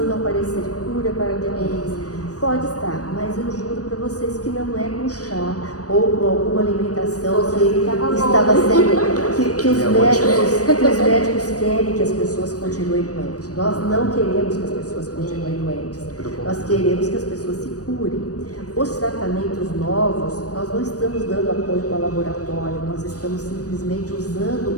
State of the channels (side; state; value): right; late; 0.67 ms